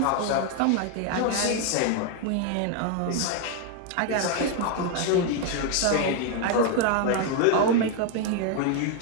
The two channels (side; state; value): both; different; correlation 0.01